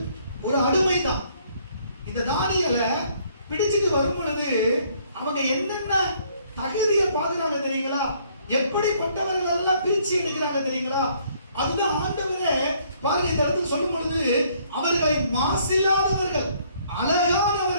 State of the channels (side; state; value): both; inverted; correlation -0.64